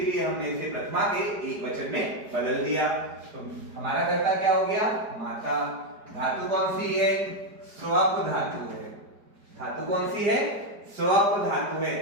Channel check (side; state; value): left; late; 4.9 ms